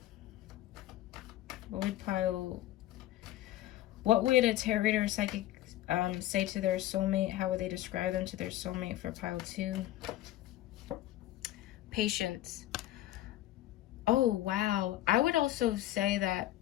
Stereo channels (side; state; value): right; quieter; 14.4 dB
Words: What would a tarot reader or psychic say to their soulmate? How would they describe them to their soulmate for pile 2? Patience. Oh wow. I would also say that